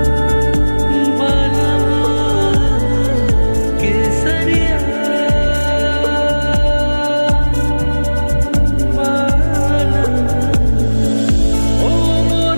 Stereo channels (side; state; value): both; inverted; correlation -1.00